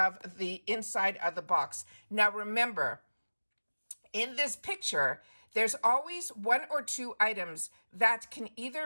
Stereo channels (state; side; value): inverted; both; correlation -1.00